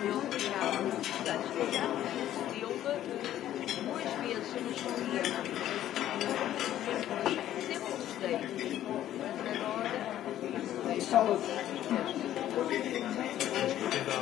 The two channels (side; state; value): right; quieter; 12.3 dB